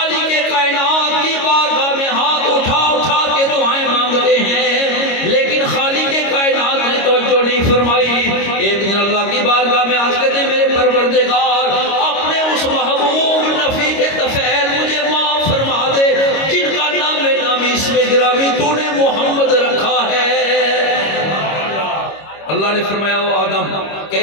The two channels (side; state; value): right; late; 25 ms